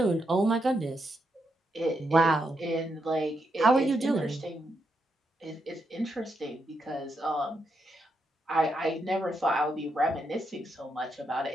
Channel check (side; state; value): both; normal; correlation 0.82